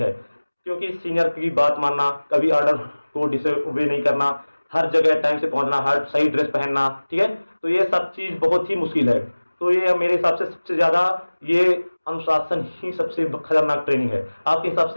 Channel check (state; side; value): inverted; both; correlation -1.00